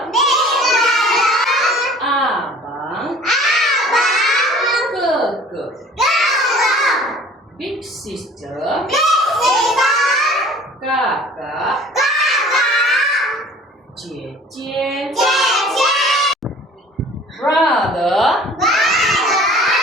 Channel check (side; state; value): both; normal; correlation 0.48